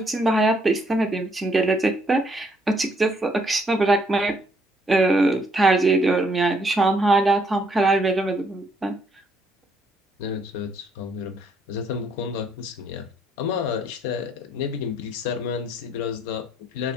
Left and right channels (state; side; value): normal; both; correlation 0.69